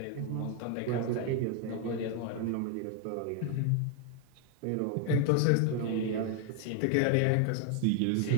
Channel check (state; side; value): different; both; correlation 0.00